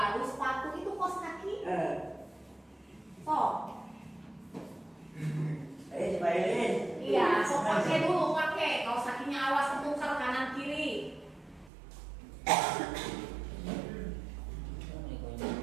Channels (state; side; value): drops out; left; at 11.7 s